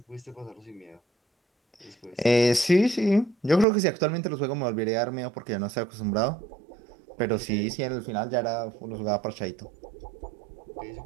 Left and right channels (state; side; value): drops out; left; at 3.7 s